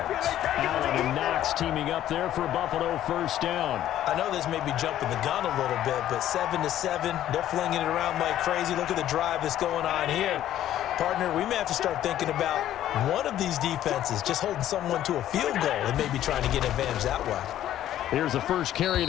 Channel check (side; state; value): right; quieter; 12.2 dB